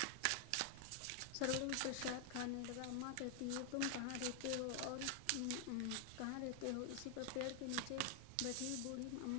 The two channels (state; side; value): different; both; correlation 0.00